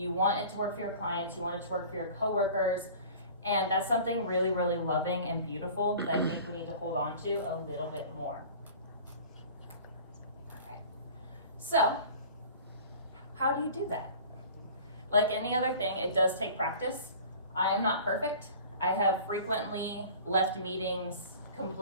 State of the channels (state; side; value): inverted; both; correlation -0.43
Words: want it to work for your clients, you want it to work for your coworkers, and that's something really, really loving and beautiful that I think we need to hold on to a little bit more. All right. So, how do you do that? Like any other thing, it does take practice. I am not perfect. I have frequently left meetings